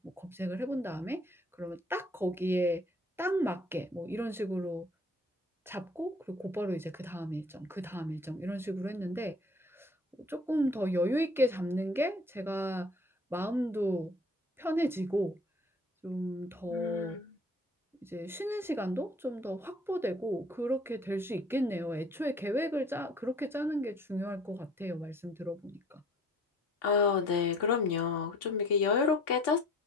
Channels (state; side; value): normal; both; correlation 0.53